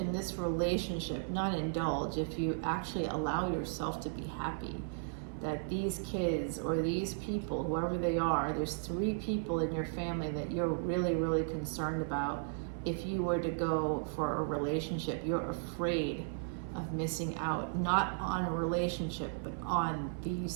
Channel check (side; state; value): left; silent; 54 dB below the other